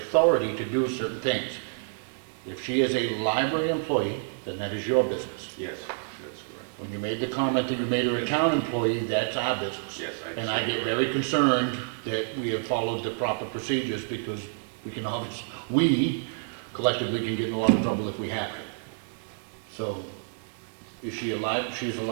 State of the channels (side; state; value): left; silent; digital silence